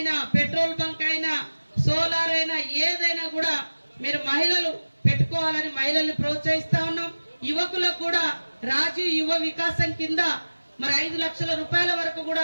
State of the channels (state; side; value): inverted; both; correlation -1.00